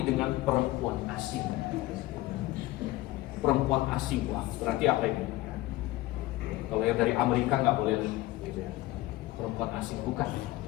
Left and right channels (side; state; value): right; quieter; 17.7 dB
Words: dengan perempuan asing. Perempuan asing, wah berarti apa ini? Kalau yang dari Amerika nggak boleh, gitu ya. Perempuan asing bukan.